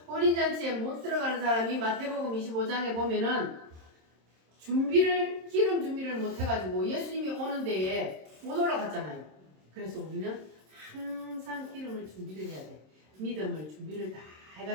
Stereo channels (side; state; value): left; late; 26 ms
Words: 혼인잔치에 못 들어가는 사람이 마태복음 25장에 보면은 기름 준비를 못 해가지고 예수님이 오는 데에 못 올라갔잖아요. 그래서 우리는 항상 기름을 준비를 해야 돼. 믿음을 준비를 다